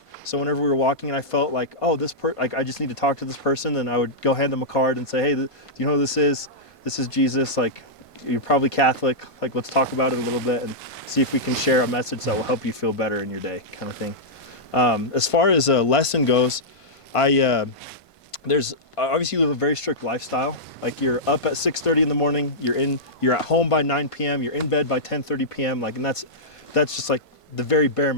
So whenever we were walking and I felt like, oh, I just need to talk to this person, then I would go hand them a card and say, hey, do you know who this is? This is Jesus. You're probably Catholic. Let's talk about it a little bit and see if we can share a message that will help you feel better in your day, kind of thing. As far as a lesson goes, there's obviously you live a very strict lifestyle. You're up at 6:30 in the morning. You're at home by 9 p.m. You're in bed by 10:30 p.m. And that's just the very bare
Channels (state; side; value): late; right; 1.5 ms